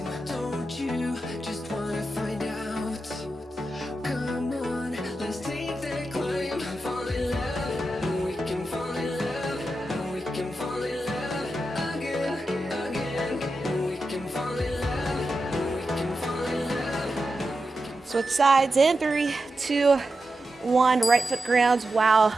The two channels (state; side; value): normal; both; correlation 0.90